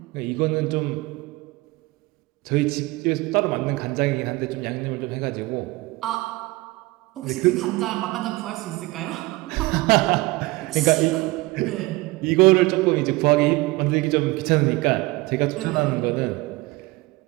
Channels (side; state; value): left; quieter; 21.7 dB